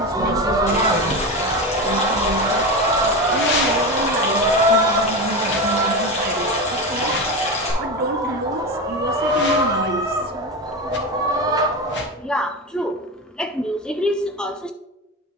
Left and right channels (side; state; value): both; normal; correlation 0.21